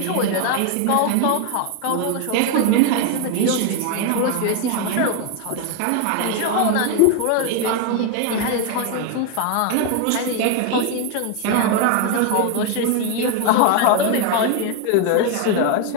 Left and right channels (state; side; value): different; both; correlation 0.01